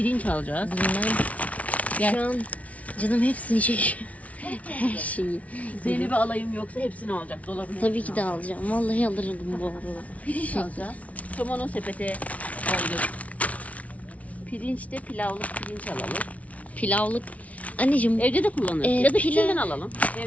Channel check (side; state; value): right; late; 0.067 ms